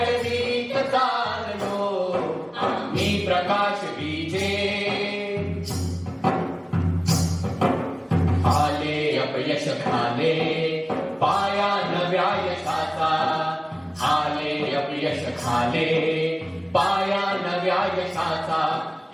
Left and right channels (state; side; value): identical; both; correlation 1.00